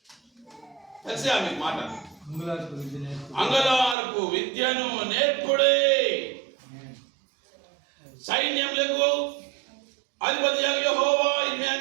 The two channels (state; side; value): drops out; left; at 4.0 s